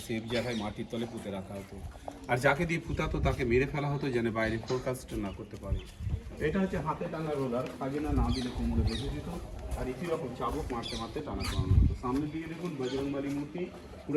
সেফ জায়গায় মাটির তলে পুঁতে রাখা হতো, আর যাকে দিয়ে পুঁতাতো তাকে মেরে ফেলা হতো যেন বাইরে ফোরকাস্ট না করতে পারে। এটা হচ্ছে হাতে টানা রোলার, খাজনা না দিলে কোমরে বেঁধে দিত, আর একই রকম চাবুক মারতে মারতে টানা টানা হতো। সামনের দিকে দেখুন বজরংবলী মূর্তি,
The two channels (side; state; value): both; identical; correlation 1.00